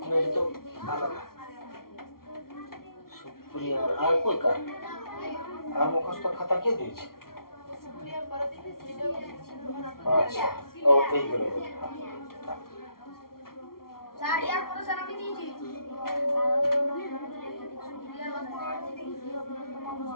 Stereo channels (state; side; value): late; right; 0.93 ms